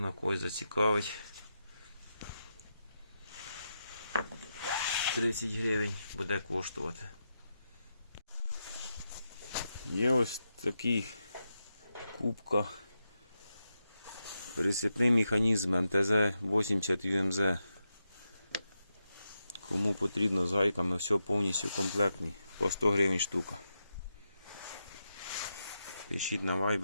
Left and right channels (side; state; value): both; inverted; correlation -0.86